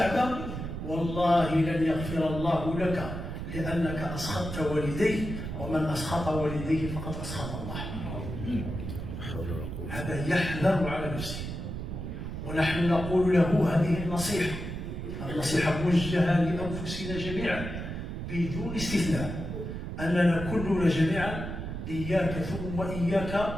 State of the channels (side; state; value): right; noise; rumble, 6 dB below the sound